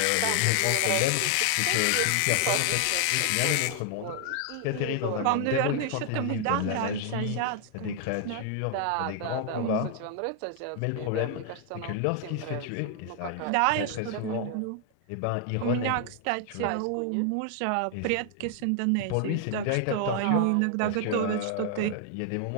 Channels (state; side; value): different; both; correlation 0.00